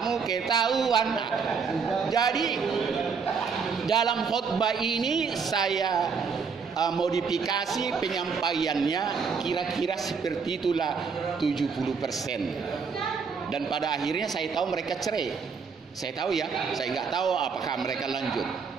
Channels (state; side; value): quieter; left; 5.6 dB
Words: ketahuan. Jadi dalam khotbah ini saya modifikasi penyampaiannya kira-kira seperti itulah 70%. Dan pada akhirnya saya tahu mereka cerai. Saya tahu ya, saya nggak tahu apakah mereka lanjut.